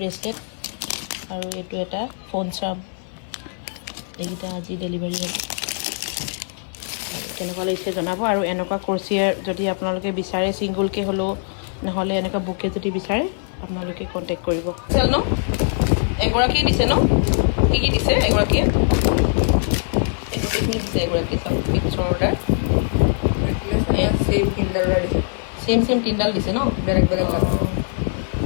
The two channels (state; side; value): silent; right; 56 dB below the other